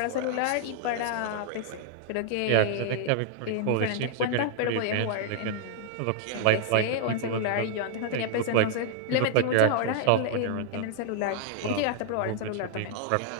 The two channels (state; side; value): different; both; correlation -0.01